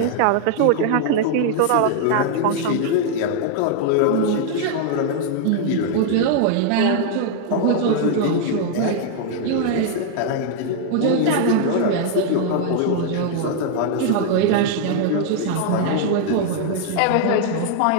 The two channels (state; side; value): different; both; correlation 0.00